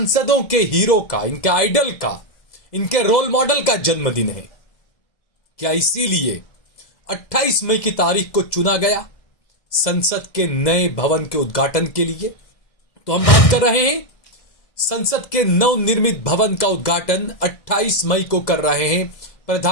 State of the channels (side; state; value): right; late; 2.1 ms